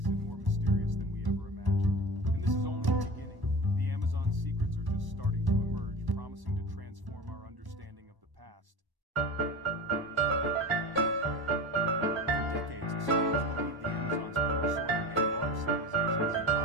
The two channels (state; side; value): late; left; 1.1 ms